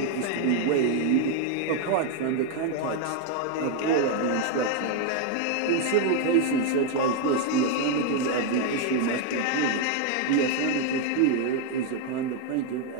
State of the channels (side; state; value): both; different; correlation 0.01